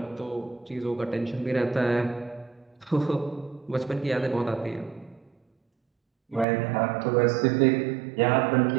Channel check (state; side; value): drops out; left; at 6.5 s